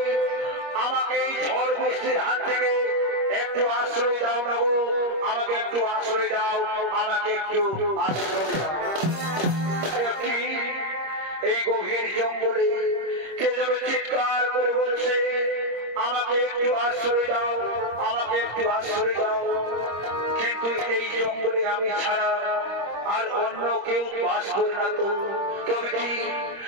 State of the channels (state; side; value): late; left; 25 ms